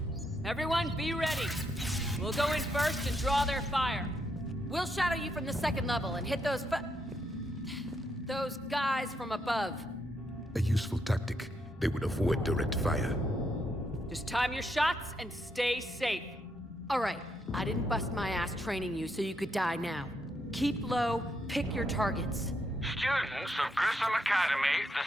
Everyone, be ready. We'll go in first and draw their fire. We'll shadow you from the second level and hit those guys from above. A useful tactic. They would avoid direct fire. Just time your shots and stay safe. All right, I didn't bust my ass training you so you could die now. Keep low, pick your targets. Students of Grissom Academy, the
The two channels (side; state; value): both; normal; correlation 0.78